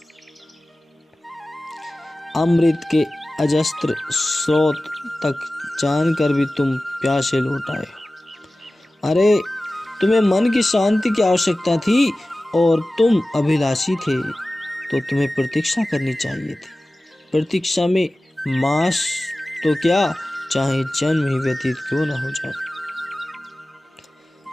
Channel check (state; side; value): normal; both; correlation 0.96